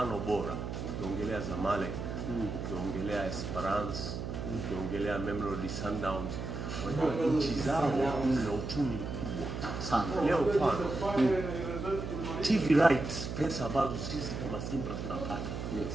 bora. Ukiongelea Zamalek, ukiongelea Esperance, ukiongelea Mamelodi Sundowns, unajua nchi zao zina uchumi mkubwa sana. Leo mfano TV rights, pesa ambazo sisi kama Simba tunapata,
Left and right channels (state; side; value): noise; right; hum, 5 dB below the sound